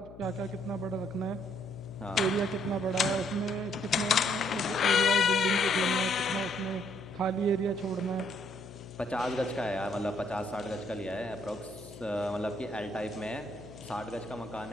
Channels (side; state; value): left; noise; hum, 17 dB below the sound